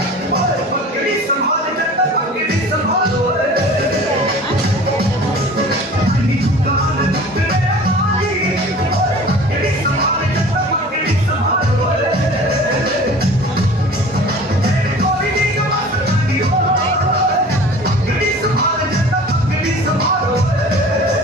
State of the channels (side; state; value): both; normal; correlation 0.43